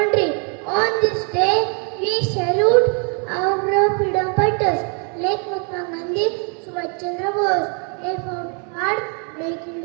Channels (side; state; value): left; quieter; 39.2 dB